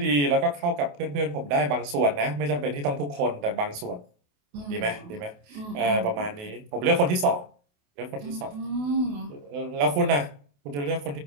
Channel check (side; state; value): left; late; 28 ms